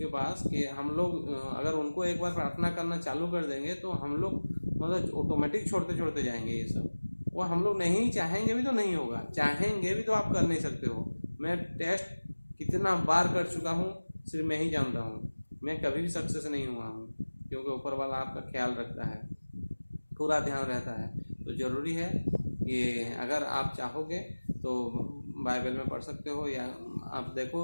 पास, कि हम लोग अगर उनको एक बार प्रार्थना करना चालू कर देंगे तो हम लोग मतलब ऑटोमेटिक छोड़ते जाएंगे ये सब। वो हम लोग नहीं चाहेंगे भी तो नहीं होगा, चाहेंगे भी तो आप कर नहीं सकते हो। मैं टेस्ट कितना बार कर चुका हूँ, सिर्फ मैं ही जानता हूँ, मैं कभी भी सक्सेस नहीं हुआ हूँ, क्योंकि ऊपर वाला आपका ख्याल रखता है, पूरा ध्यान रहता है। तो ज़रूरी है कि अगर आप चाहोगे तो बाइबल में पढ़ सकते हो, या आप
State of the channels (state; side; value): inverted; both; correlation -1.00